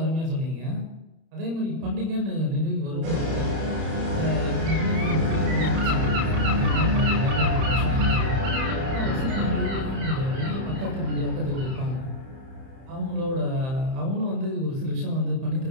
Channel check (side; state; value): left; late; 31 ms